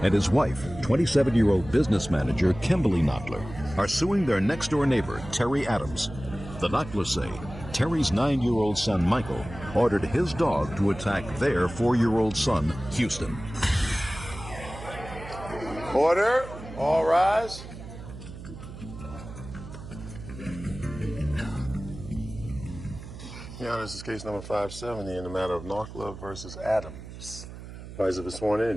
and his wife, 27-year-old business manager Kimberly Knottler, are suing their next-door neighbor, Terry Adams. The Knottlers say Terry's 9-year-old son, Michael, ordered his dog to attack their 4-year-old son, Houston. Order. All rise. Your Honor, this is case number 570 in the matter of Knottler versus Adams. Parties have been sworn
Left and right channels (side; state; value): right; noise; hum, 13 dB below the sound